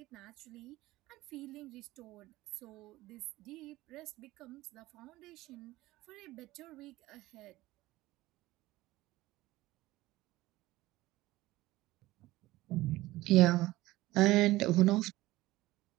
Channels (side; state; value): left; quieter; 17.8 dB